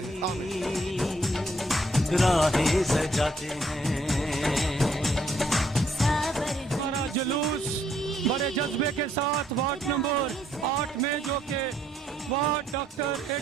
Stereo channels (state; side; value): normal; both; correlation 0.69